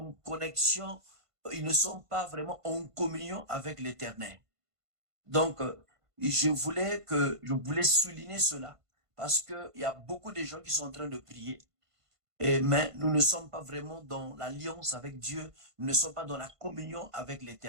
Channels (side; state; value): left; late; 1.5 ms